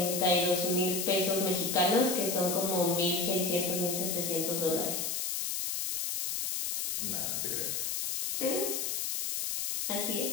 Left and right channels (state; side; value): noise; left; hiss, 1 dB below the sound